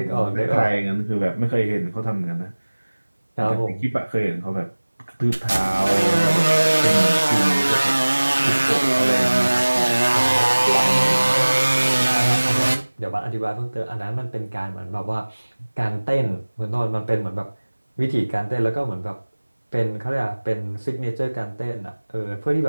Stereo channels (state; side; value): inverted; both; correlation -1.00